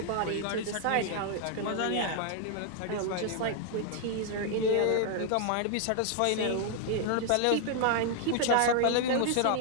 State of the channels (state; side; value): different; both; correlation 0.00